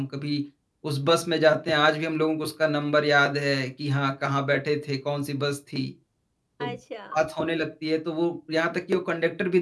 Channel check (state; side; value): identical; both; correlation 1.00